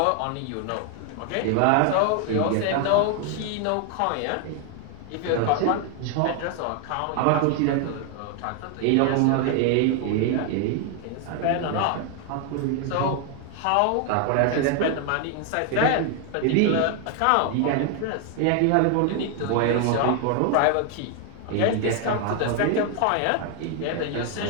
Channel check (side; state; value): both; different; correlation 0.00